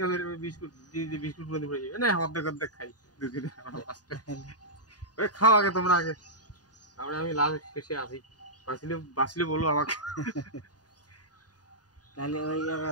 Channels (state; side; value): late; right; 0.68 ms